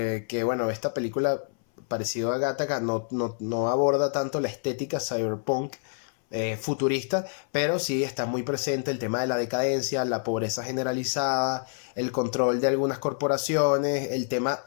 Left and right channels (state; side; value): silent; right; 59 dB below the other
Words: que bueno, esta película, parecido a Gattaca, no aborda tanto la estética cyberpunk futurista, pero sí está muy presente el tema de la decadencia, la pobreza generalizada, el control de algunas corporaciones, el tema,